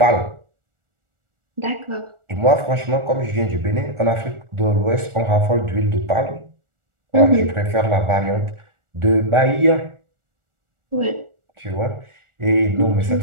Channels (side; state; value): left; late; 1.4 ms